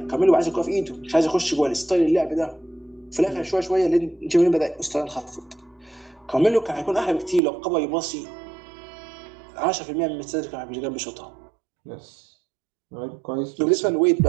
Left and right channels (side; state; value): left; drops out; at 7.4 s